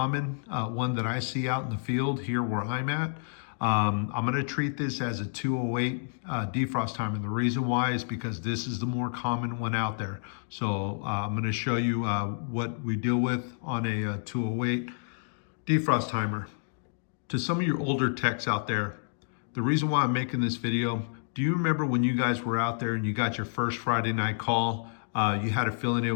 one that I see out in the field here where I'm at. I'm going to treat this as a 208 defrost timer. And the reason why is because this is the more common one out there. So I'm going to show you what we deal with on a 208 defrost timer. To some of your older techs out there, the reason why I'm making this video, do you remember when you guys were out there and you got your first Friday night call? You had a feeling it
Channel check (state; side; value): silent; right; digital silence